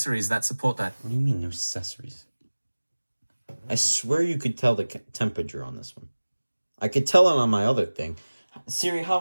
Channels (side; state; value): both; inverted; correlation -1.00